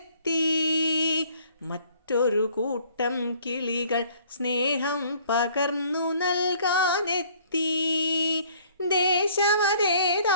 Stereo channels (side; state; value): both; inverted; correlation -0.58